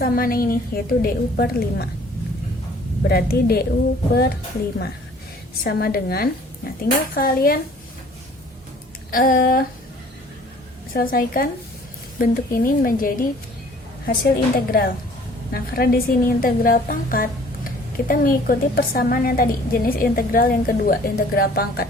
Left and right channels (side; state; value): both; normal; correlation 0.53